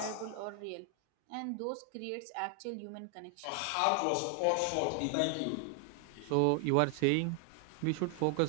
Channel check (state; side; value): different; both; correlation 0.00